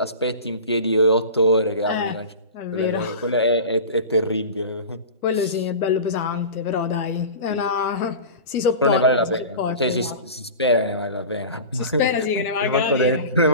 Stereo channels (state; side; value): inverted; both; correlation -0.33